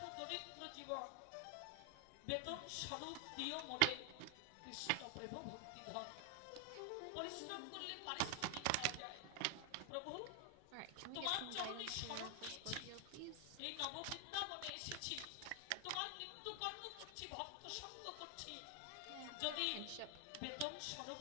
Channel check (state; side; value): different; both; correlation 0.00